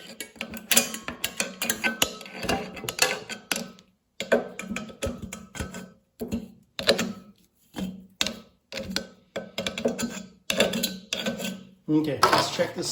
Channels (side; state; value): both; identical; correlation 1.00